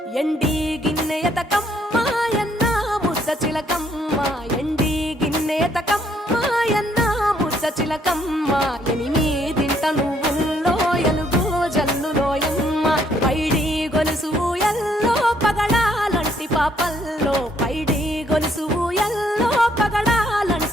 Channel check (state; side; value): normal; both; correlation 0.68